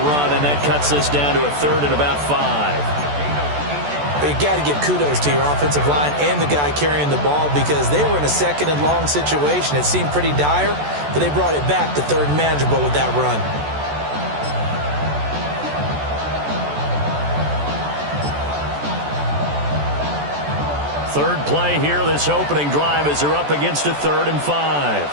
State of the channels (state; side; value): late; left; 14 ms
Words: run, and that cuts this down to a 3rd and about 5. But you got to give kudos to your offensive line and the guy carrying the ball because they were in a 2nd and long situation. It seemed pretty dire, but they brought it back to 3rd and manageable with that run. Third play here, this opening drive, as they're up against a 3rd and 5.